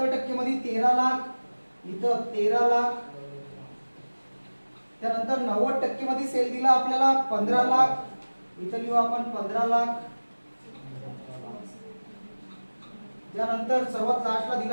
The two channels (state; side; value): inverted; both; correlation -1.00